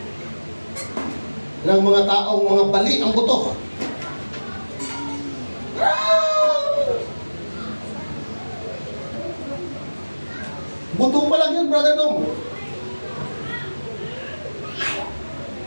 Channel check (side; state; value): both; inverted; correlation -1.00